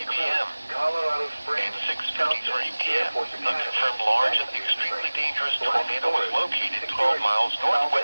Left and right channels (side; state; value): both; inverted; correlation -1.00